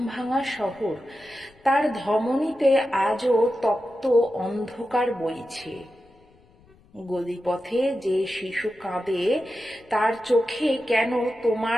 শহর, তার ধমনীতে আজও তপ্ত অন্ধকার বইছে। গলিপথে যে শিশু কাঁদে, তার চোখে কেন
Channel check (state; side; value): noise; left; rumble, 29 dB below the sound